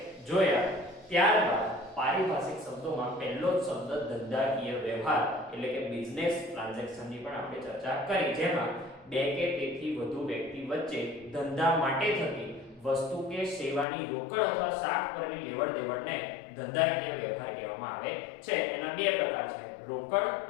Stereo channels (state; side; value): drops out; right; at 13.9 s